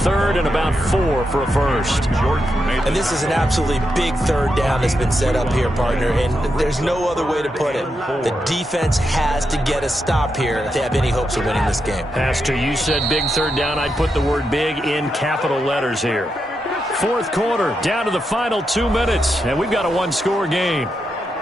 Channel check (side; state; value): both; normal; correlation 0.85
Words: and about 4 for a 1st. And this is an absolutely big 3rd down that's been set up here, partner, and there's no other way to put it. The defense has to get a stop here if they have any hopes of winning this game. Pastor, you said big 3rd down. I'd put the word big in capital letters here. 4th quarter, down to the final 2 minutes, and we've got a 1-score game.